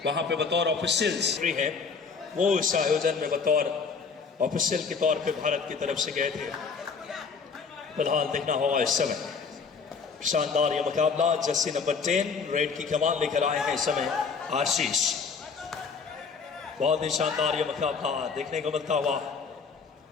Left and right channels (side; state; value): right; quieter; 5.3 dB